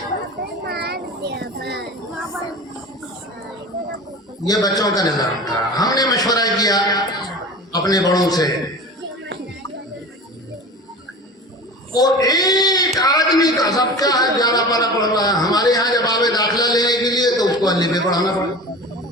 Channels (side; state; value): both; normal; correlation 0.34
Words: یہ بچوں کا نظام تھا. ہم نے مشورہ کیا اپنے بڑوں سے, اور ایک آدمی کا سب کیا ہے 11 پارہ پڑھ رہا ہے. ہمارے یہاں جب آوے داخلہ لینے کے لیے تو اس کو الف پہ پڑھانا پڑا.